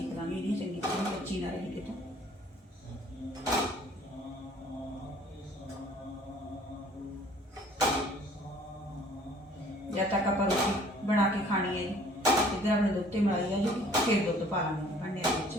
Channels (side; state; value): both; normal; correlation 0.54